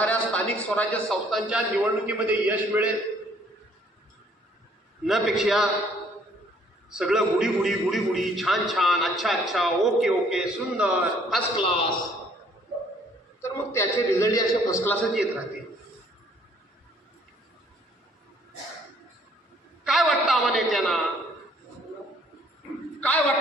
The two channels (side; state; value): both; normal; correlation 0.61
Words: स्थानिक स्वराज्य संस्थांच्या निवडणुकीमध्ये यश मिळेल. न पेक्षा सगळं गुडी गुडी गुडी गुडी, छान छान, अच्छा अच्छा, ओके ओके, सुंदर, फर्स्ट क्लास, तर मग त्याचे रिझल्ट असे फर्स्ट क्लासच येत राहते. काय वाटतं आम्हा नेत्यांना, काय